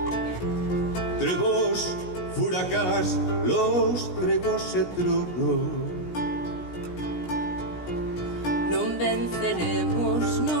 trebos, furacás, los tregos e tronos. Non venceremos,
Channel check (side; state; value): right; late; 17 ms